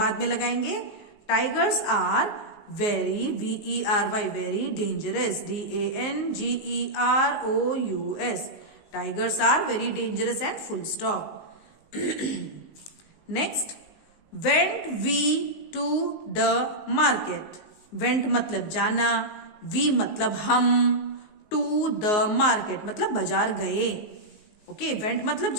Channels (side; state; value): right; late; 19 ms